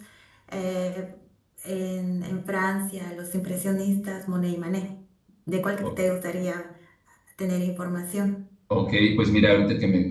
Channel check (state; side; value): identical; both; correlation 1.00